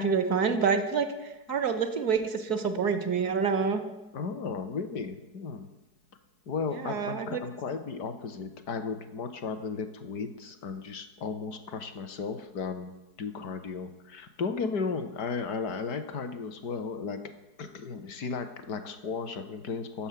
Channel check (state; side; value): late; right; 4.7 ms